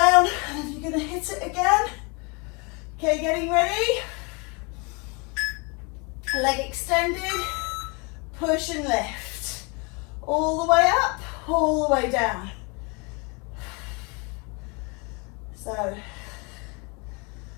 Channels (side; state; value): right; quieter; 30.9 dB